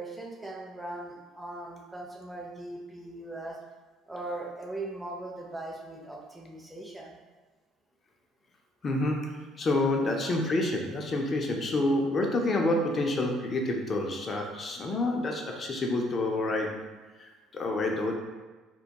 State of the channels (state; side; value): normal; both; correlation 0.67